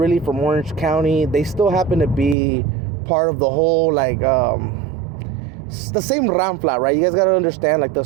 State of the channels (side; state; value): left; drops out; at 2.4 s